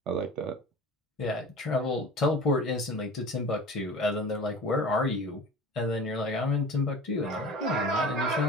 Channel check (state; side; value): normal; both; correlation 0.38